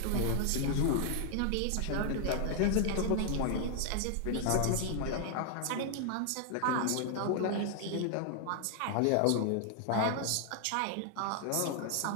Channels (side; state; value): both; different; correlation 0.00